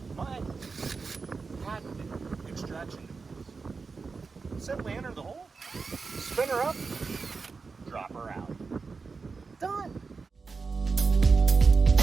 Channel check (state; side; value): quieter; left; 4.6 dB